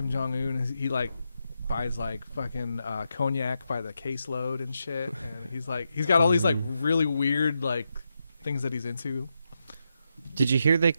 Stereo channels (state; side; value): inverted; both; correlation -0.85